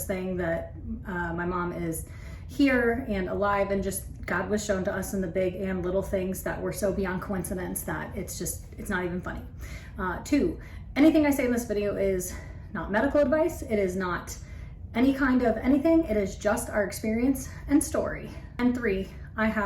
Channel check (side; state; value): both; identical; correlation 1.00